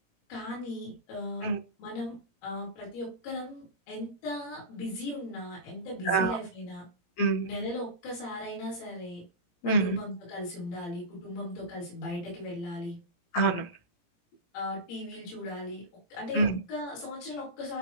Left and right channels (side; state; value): right; late; 17 ms